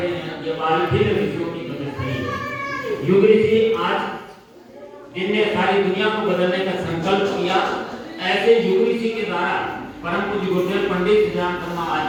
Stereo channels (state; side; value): identical; both; correlation 1.00